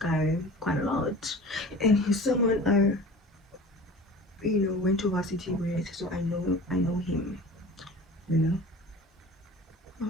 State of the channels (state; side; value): normal; both; correlation 0.40